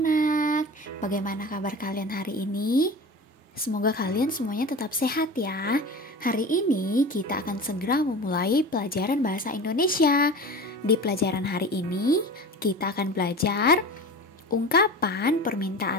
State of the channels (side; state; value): both; normal; correlation 0.33